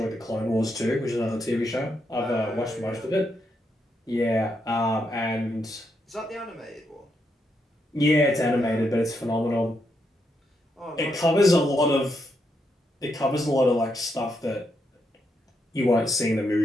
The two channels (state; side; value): normal; both; correlation 0.80